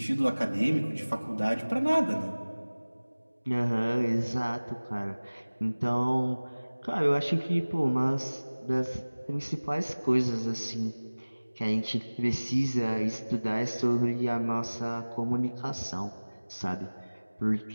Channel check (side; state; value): both; inverted; correlation -1.00